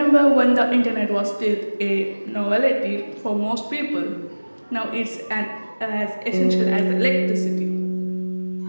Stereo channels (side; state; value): both; inverted; correlation -1.00